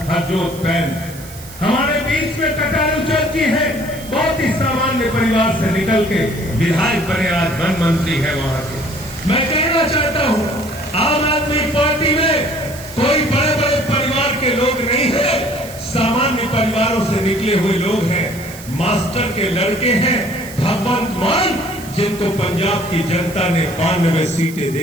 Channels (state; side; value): noise; right; hiss, 17 dB below the sound